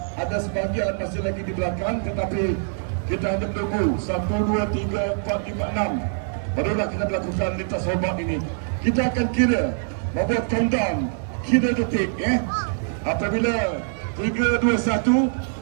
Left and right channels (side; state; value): left; silent; digital silence